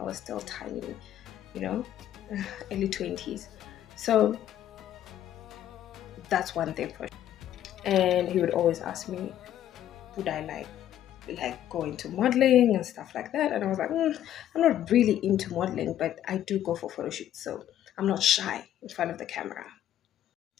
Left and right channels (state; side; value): quieter; right; 11.7 dB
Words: was still tiny, you know, early 20s. So that's one thing for sure. And he would always ask me, would I like go into modeling and stuff like that? And I was like, I'm not really into modeling, but I do go for photo shoots, so I'm not shy in front of the camera.